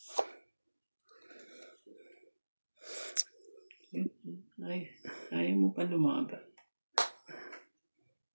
Ayaw mo pa lumaban.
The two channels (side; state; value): both; inverted; correlation -1.00